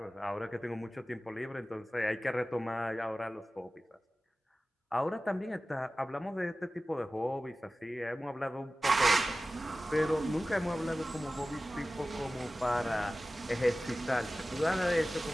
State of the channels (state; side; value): normal; both; correlation 0.96